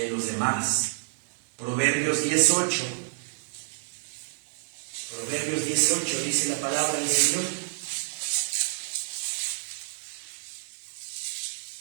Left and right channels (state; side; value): silent; left; 59 dB below the other